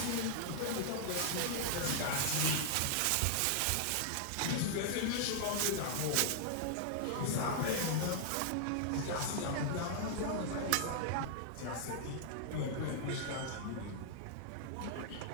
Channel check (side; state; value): both; different; correlation -0.01